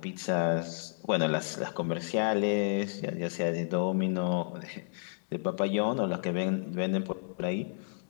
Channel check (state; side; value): silent; right; digital silence